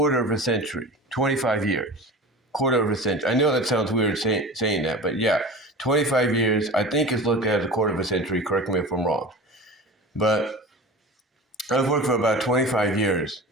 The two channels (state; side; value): normal; both; correlation 0.34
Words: of a century, 25 years, quarter of a century. I know that sounds weird saying that, but yeah, 25 years, I think is looked at as a quarter of a century. Correct me if I'm wrong. But I've worked for about 25 years,